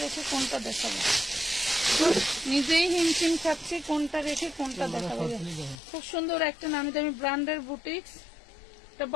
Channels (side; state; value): right; drops out; at 5.8 s